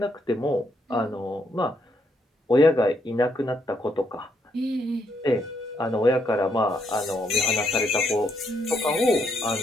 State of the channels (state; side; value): normal; both; correlation 0.75